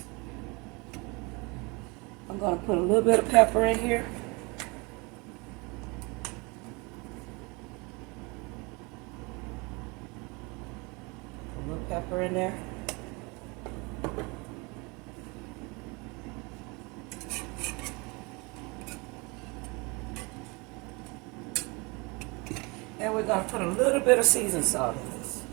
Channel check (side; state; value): left; quieter; 27.9 dB